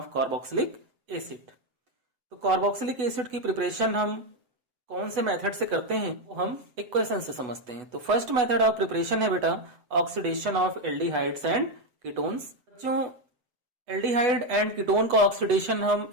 carboxylic acid. तो कार्बोक्सिलिक एसिड की प्रिपरेशन हम कौन से मेथड से करते हैं वो हम इक्वेशन से समझते हैं। तो फर्स्ट मेथड ऑफ प्रिपरेशन है बेटा oxidation of aldehydes and ketones. बच्चों, एल्डिहाइड एंड कीटोन का ऑक्सीडेशन हम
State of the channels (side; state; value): left; late; 8.1 ms